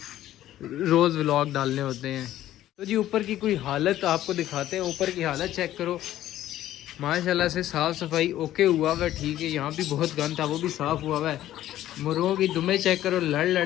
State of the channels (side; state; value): right; quieter; 13.3 dB